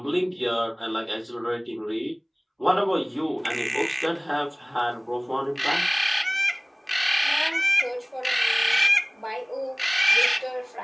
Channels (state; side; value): identical; both; correlation 1.00